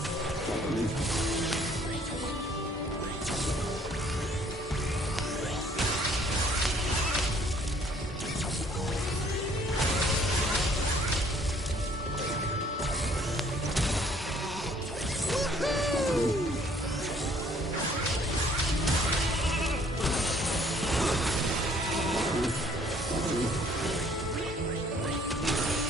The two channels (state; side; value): normal; both; correlation 0.60